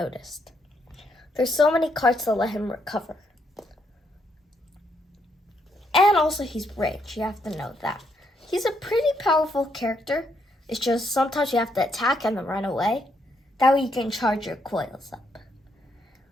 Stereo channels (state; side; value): normal; both; correlation 0.75